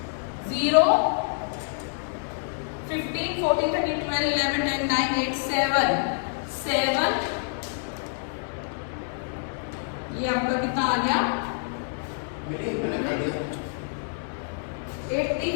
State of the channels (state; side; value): silent; right; digital silence